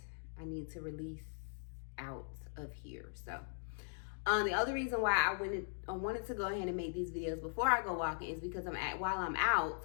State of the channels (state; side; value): silent; right; digital silence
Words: I need to release out of here. So the other reason why I wanted to go ahead and make these videos before I go walking is because while I'm